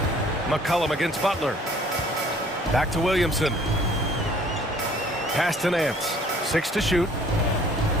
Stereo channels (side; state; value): both; normal; correlation 0.56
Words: McCollum against Butler. Back to Williamson. Pass to Nance. 6 to shoot.